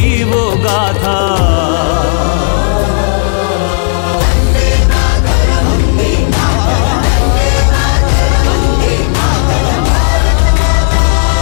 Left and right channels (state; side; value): silent; right; digital silence